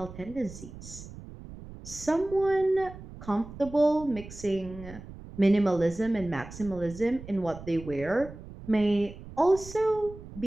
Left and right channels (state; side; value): noise; right; rumble, 15 dB below the sound